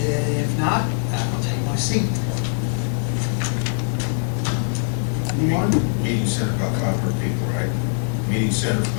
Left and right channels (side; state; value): right; silent; digital silence